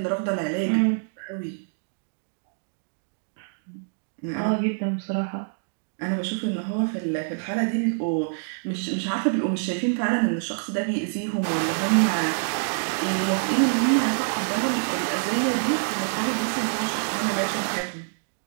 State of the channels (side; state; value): left; silent; digital silence